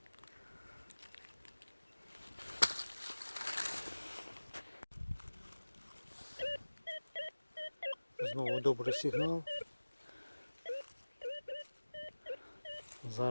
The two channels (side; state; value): both; inverted; correlation -1.00